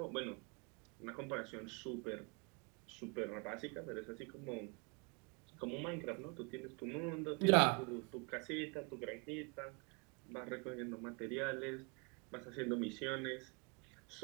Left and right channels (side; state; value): left; quieter; 32.6 dB